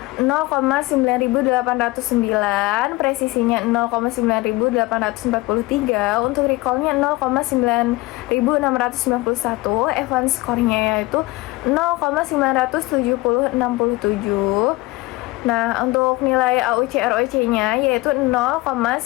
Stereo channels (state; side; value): quieter; right; 20.7 dB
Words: 0,9809, presisinya 0,9843, untuk recallnya 0,9691, F1 skornya yaitu 0,97067. Nah, untuk nilai AUC ROC-nya yaitu